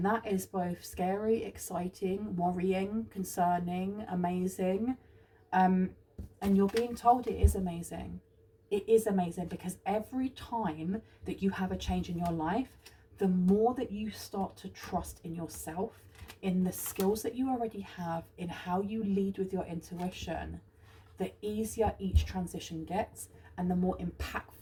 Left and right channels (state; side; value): identical; both; correlation 1.00